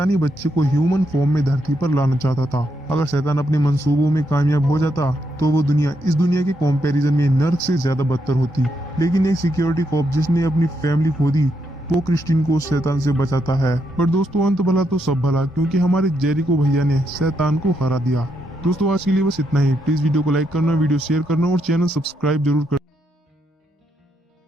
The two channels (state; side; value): normal; both; correlation 0.79